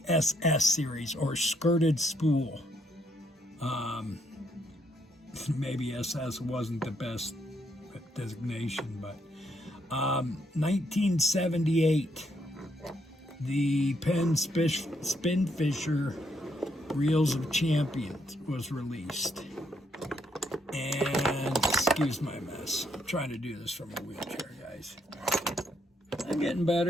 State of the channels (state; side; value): normal; both; correlation 0.74